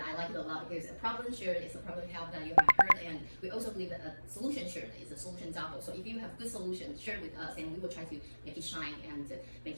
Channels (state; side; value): inverted; both; correlation -1.00